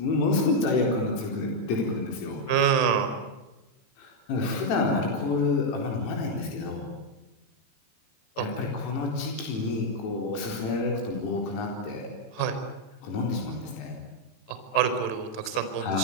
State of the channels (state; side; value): late; right; 18 ms